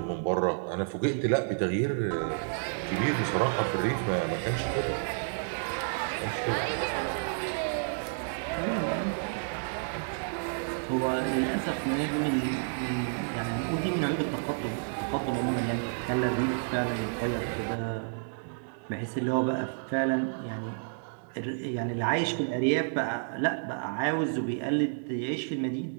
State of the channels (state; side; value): silent; left; digital silence